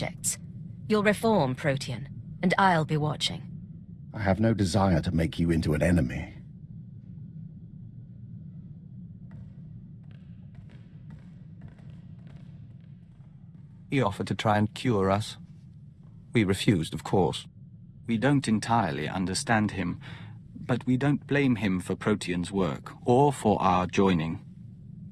You'll reform Protean, and I'll be watching. I have no desire to make you into an enemy. He offered to try and cure us. We refused, of course. We don't entirely understand him, but we don't blame him for Protean's work, or for our joining,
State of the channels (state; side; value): identical; both; correlation 1.00